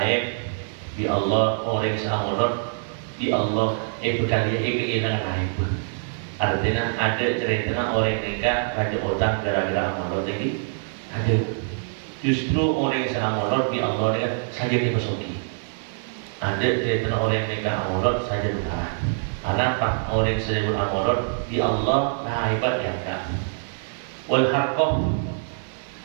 di Allah orang yang molot di Allah berkali kehilangan lain. Artinya ada cerita orang nikah raja utang gara-gara molot ini ada. Justru orang yang sangat molot di Allah ini saja dipesoki. Ada cerita orang yang nikah molot saja berkarat. Kenapa orang yang sedang molot di Allah nah hebat yang tak. Wal harqah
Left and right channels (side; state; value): left; silent; digital silence